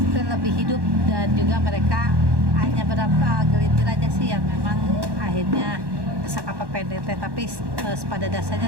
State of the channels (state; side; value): late; left; 1.1 ms